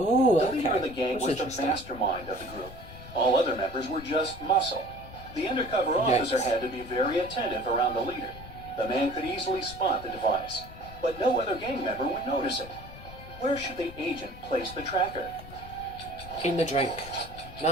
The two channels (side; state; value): left; noise; rumble, 15 dB below the sound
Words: The okay. leader of the gang was the mastermind of the group. All other members were just muscle. The undercover officer had to be very attentive around the leader. The man could easily spot the device, but no other gang member would notice it. Where should the agent place the tracker? In the drink.